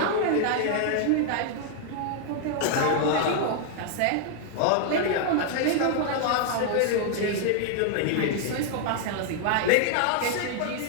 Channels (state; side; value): different; both; correlation 0.00